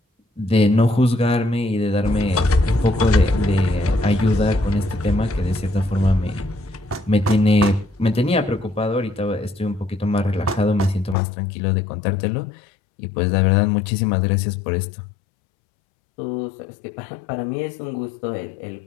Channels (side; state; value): right; drops out; at 11.2 s